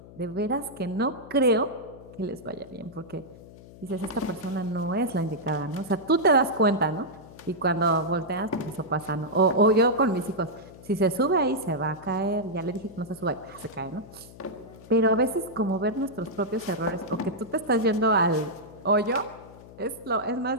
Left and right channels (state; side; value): noise; left; hum, 19 dB below the sound